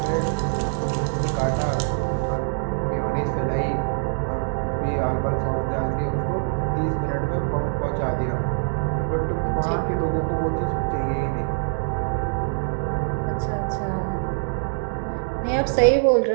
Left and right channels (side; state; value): left; silent; digital silence